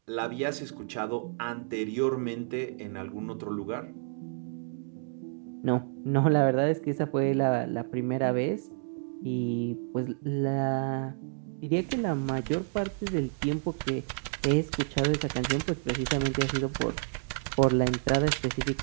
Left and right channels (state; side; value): silent; left; digital silence